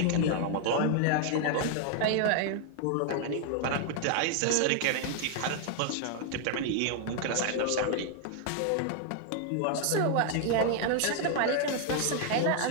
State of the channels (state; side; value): different; both; correlation 0.00